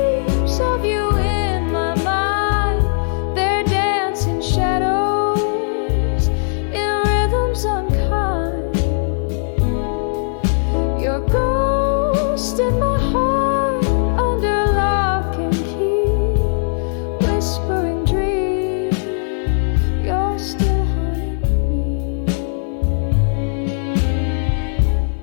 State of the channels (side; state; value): right; silent; digital silence